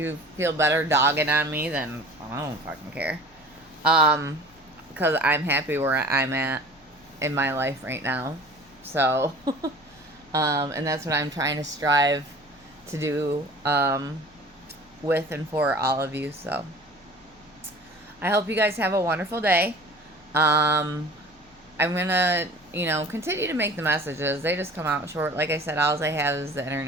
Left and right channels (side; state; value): left; noise; hum, 30 dB below the sound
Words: feel better dogging on me, then I don't fucking care. Because I'm happy where I'm at in my life right now. So, and that's what I'm trying to strive to do, with and for all of you. So, I hope you guys have a wonderful day. I'm gonna, you know, continue to make the messages. They just come out short. Like I said, all I have is the